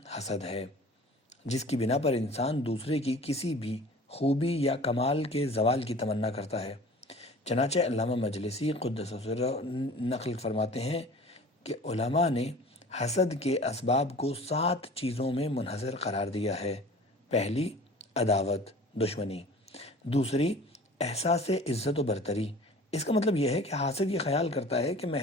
حسد ہے، جس کی بنا پر انسان دوسرے کی کسی بھی خوبی یا کمال کے زوال کی تمنا کرتا ہے۔ چنانچہ علامہ مجلسی قدس سرہ نقل فرماتے ہیں کہ علماء نے حسد کے اسباب کو 7 چیزوں میں منحصر قرار دیا ہے۔ پہلی، عداوت، دشمنی۔ دوسری، احساس عزت و برتری۔ اس کا مطلب یہ ہے کہ حاسد یہ خیال کرتا ہے کہ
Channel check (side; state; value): both; normal; correlation 0.43